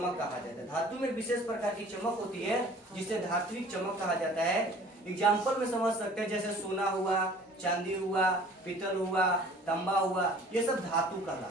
कहा जाता है। धातु में विशेष प्रकार की चमक होती है जिसे धात्विक चमक कहा जाता है। एग्जाम्पल में समझ सकते हैं, जैसे सोना हुआ, चांदी हुआ, पीतल हुआ, तांबा हुआ, ये सब धातु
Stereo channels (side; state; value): both; normal; correlation 0.49